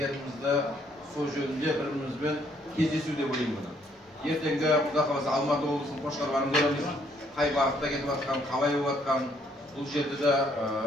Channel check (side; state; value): both; normal; correlation 0.68